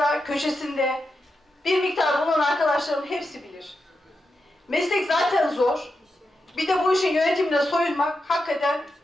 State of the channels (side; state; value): both; normal; correlation 0.87